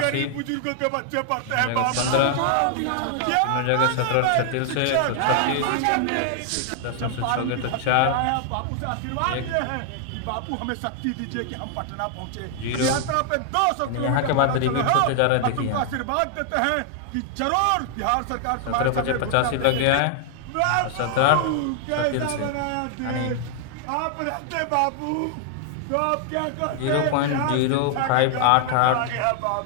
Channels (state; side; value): different; both; correlation 0.00